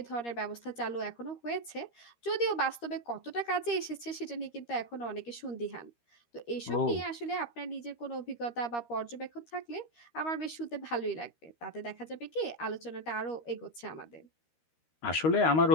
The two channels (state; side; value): late; right; 13 ms